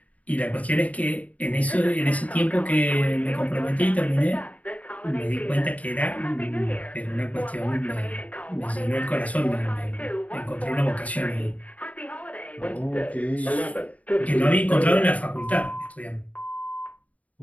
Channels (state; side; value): late; right; 0.070 ms